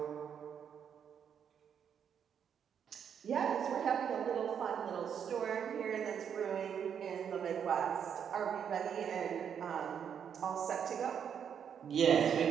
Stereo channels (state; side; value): quieter; left; 8.0 dB